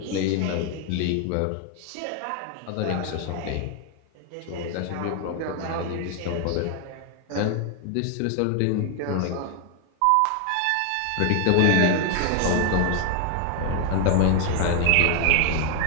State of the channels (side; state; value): both; different; correlation 0.01